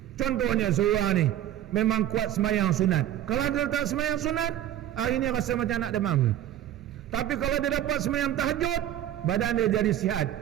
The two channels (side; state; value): left; quieter; 11.9 dB